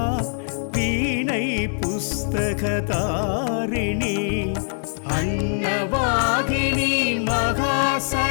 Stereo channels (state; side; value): silent; right; 64 dB below the other